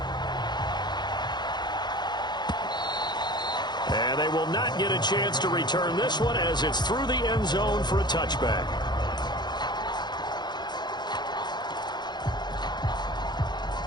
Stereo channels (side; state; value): right; late; 0.21 ms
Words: And they will not get a chance to return this one as it's through the end zone for a touchback.